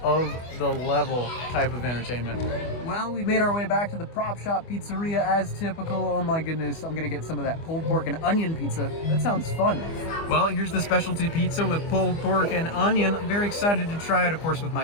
of the level type of entertainment. Well, we've made our way back to the Prop Shop Pizzeria as typical. Oh my goodness, I'm gonna get some of that pulled pork and onion pizza. That sounds fun. Well, here's the specialty pizza with pulled pork and onion. I'm very excited to try it. Of course, with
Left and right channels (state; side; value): late; right; 25 ms